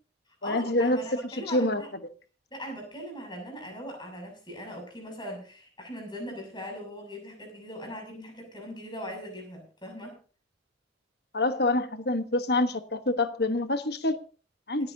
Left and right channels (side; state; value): both; normal; correlation 0.11